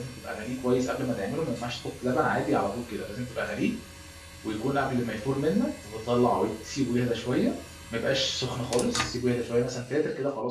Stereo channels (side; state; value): both; identical; correlation 1.00